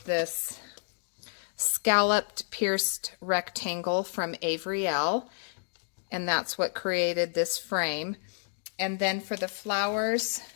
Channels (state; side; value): silent; right; digital silence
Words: this scalloped pierced rectangle from Avery Elle, and that's what created this frame. And then for the flowers,